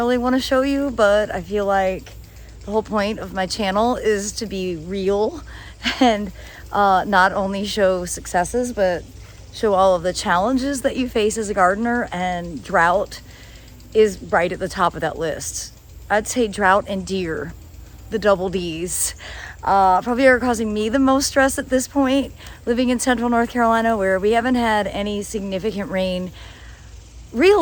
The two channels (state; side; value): identical; both; correlation 1.00